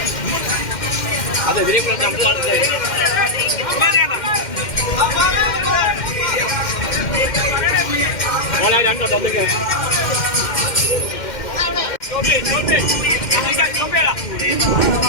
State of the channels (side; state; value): right; late; 2.1 ms